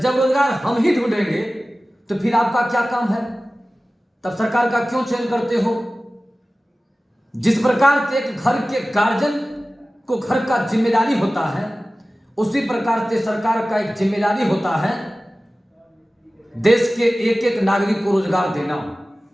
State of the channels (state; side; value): normal; both; correlation 0.97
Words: रोजगार हम ही ढूंढेंगे तो फिर आपका क्या काम है? तब सरकार का क्यों चयन करते हो? जिस प्रकार से एक घर के गार्जियन को घर का जिम्मेदारी होता है, उसी प्रकार से सरकार का एक जिम्मेदारी होता है देश के एक एक नागरिक को रोजगार देना,